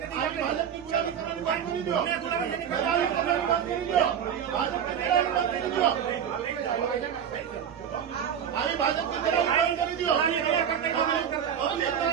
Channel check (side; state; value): left; quieter; 8.4 dB